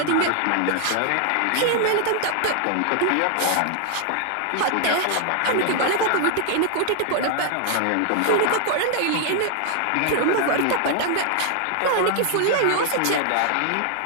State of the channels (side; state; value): both; different; correlation 0.00